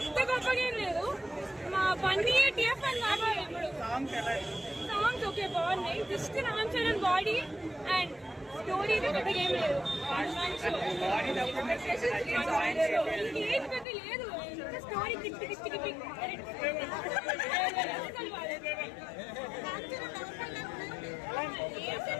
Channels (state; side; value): drops out; right; at 13.9 s